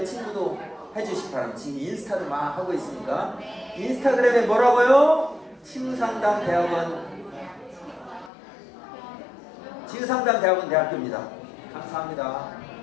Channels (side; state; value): right; drops out; at 8.3 s